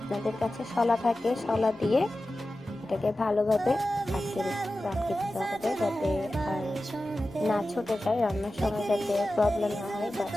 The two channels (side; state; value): left; noise; hum, 30 dB below the sound